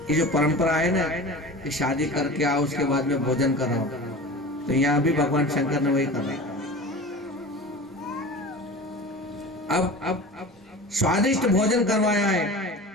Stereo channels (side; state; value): both; normal; correlation 0.35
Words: ये जो परंपरा है ना कि शादी करके आओ उसके बाद में भोजन कराओ, तो यहाँ भी भगवान शंकर ने वही करा। अब स्वादिष्ट भोजन करवाया है